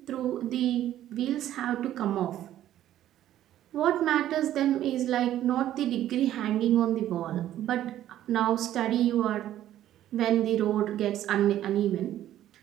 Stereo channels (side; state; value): left; quieter; 12.4 dB